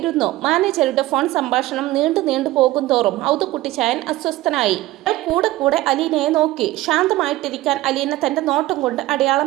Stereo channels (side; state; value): left; quieter; 17.4 dB